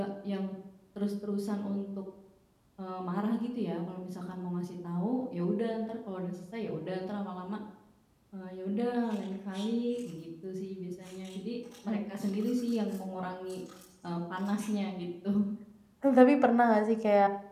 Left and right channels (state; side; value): identical; both; correlation 1.00